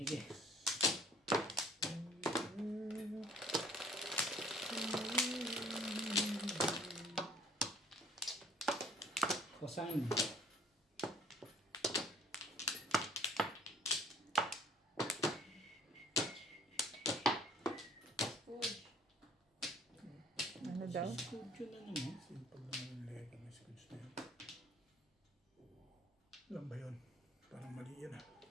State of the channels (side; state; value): both; normal; correlation 0.55